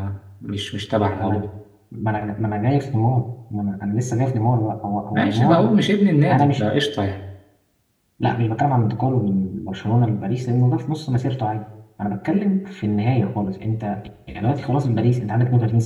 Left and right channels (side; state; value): both; identical; correlation 1.00